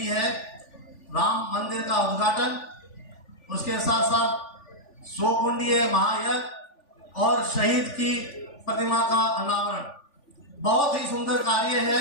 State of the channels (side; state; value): right; late; 3.4 ms